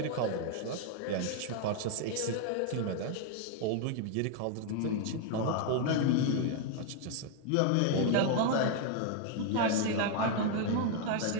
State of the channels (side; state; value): both; different; correlation 0.00